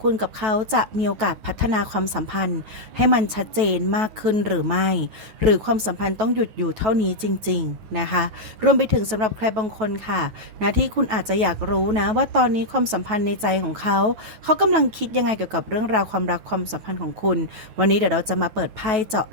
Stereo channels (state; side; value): late; left; 9.2 ms